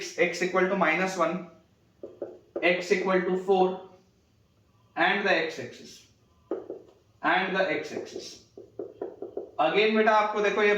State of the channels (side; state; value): both; identical; correlation 1.00